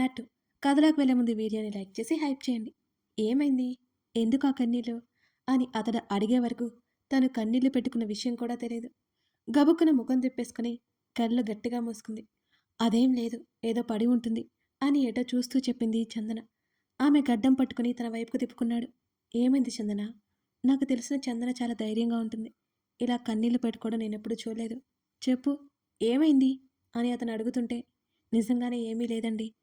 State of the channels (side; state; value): both; identical; correlation 1.00